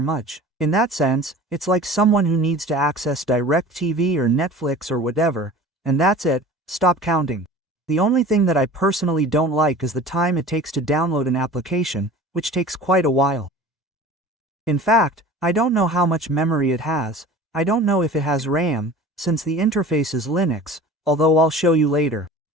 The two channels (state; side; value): normal; both; correlation 0.41